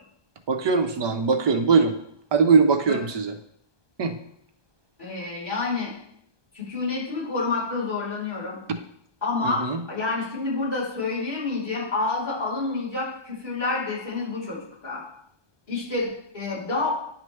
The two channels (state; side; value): late; left; 1.2 ms